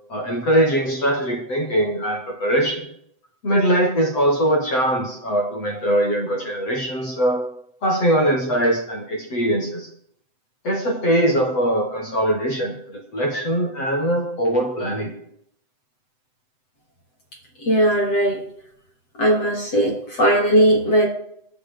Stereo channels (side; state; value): right; late; 7.9 ms